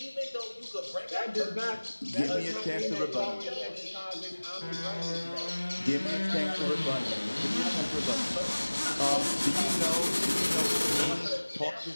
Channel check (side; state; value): both; inverted; correlation -1.00